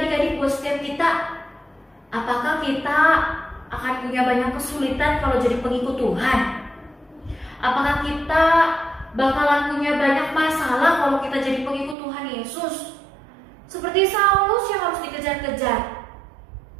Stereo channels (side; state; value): left; drops out; at 12.0 s